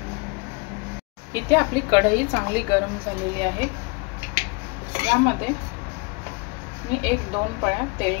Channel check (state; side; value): quieter; right; 28.8 dB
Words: इथे आपली कढई चांगली गरम झालेली आहे। यामध्ये मी 1-2 पळ्या